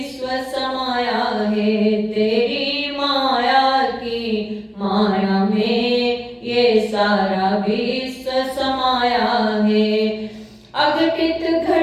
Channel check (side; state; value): both; identical; correlation 1.00